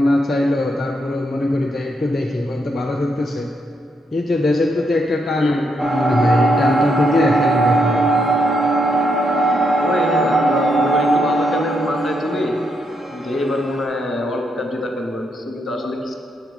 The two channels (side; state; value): both; normal; correlation 0.79